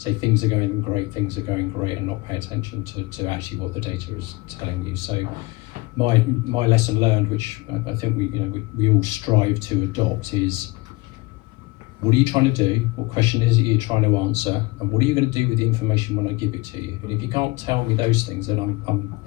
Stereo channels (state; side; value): quieter; right; 22.7 dB